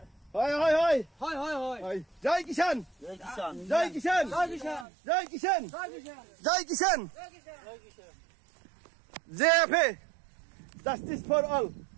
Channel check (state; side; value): drops out; left; at 4.9 s